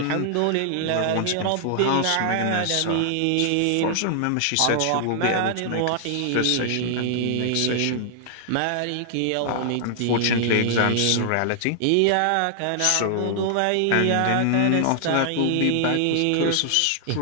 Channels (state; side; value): different; both; correlation -0.01